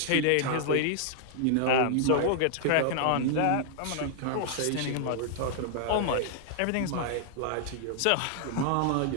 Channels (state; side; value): different; both; correlation -0.01